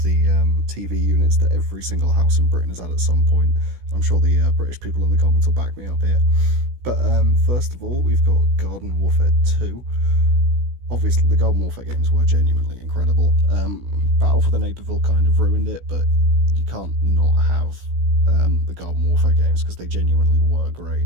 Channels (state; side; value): late; left; 16 ms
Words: the TV units that every single house in Britain has had at some point. I'm sure the British people in the comments will back me up here. But first of all, we've got Garden Warfare 2. Obviously, the Garden Warfare games were genuinely incredible. Battle for the Neighbourville kind of ruined it, but you can't not have the Garden Warfare games because they genuinely were great.